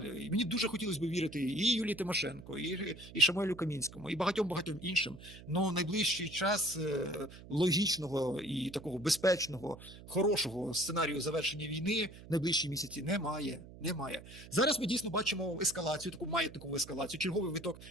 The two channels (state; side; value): noise; right; hum, 17 dB below the sound